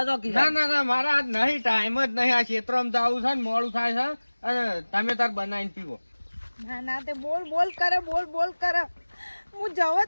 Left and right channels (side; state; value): both; inverted; correlation -1.00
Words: જો ના મારા આજ નહીં ટાઈમ જ નહીં. આ ક્ષેત્રમાં જવું છે ને મોડું થાય છે અને તમે તાર બનાવીને પીવો. ના તે બોલ કરે હું જવો